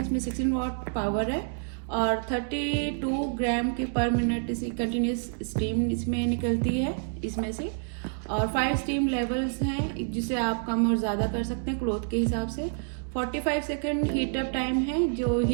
इसमें 16 वाट पावर है और 32 ग्राम की पर मिनट इसी कंटिन्यूस स्टीम इसमें निकलती है इसमें से, और 5 स्टीम लेवल्स हैं जिसे आप कम और ज़्यादा कर सकते हैं क्लॉथ के हिसाब से। 45 सेकंड हीट अप टाइम है, जो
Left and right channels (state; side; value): silent; left; digital silence